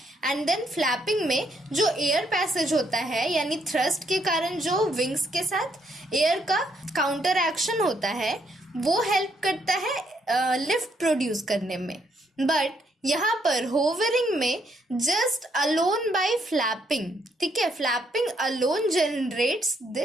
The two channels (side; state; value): both; normal; correlation 0.73